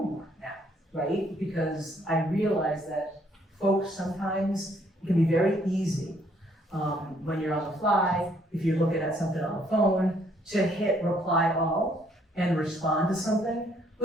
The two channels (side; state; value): both; normal; correlation 0.67